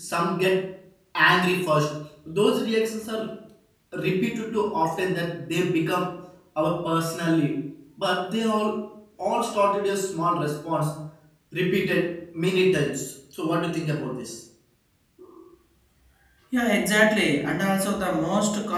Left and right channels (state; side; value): identical; both; correlation 1.00